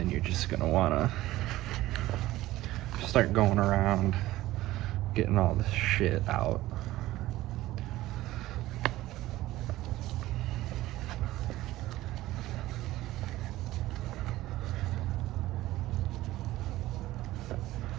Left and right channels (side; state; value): left; quieter; 16.4 dB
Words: you're just gonna wanna start going around getting all this shit out.